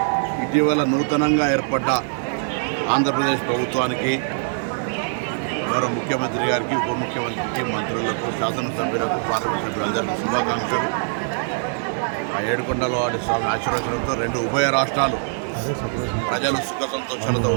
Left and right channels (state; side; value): silent; left; 61 dB below the other